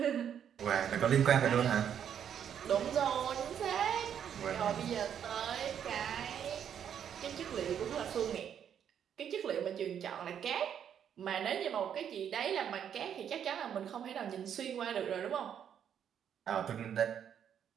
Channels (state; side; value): quieter; left; 8.8 dB